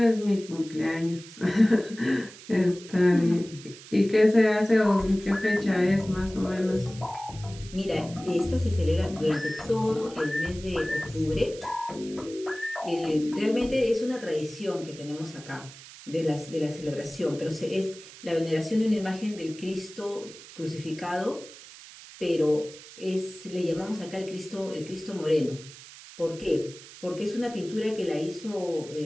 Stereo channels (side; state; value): right; noise; hiss, 17 dB below the sound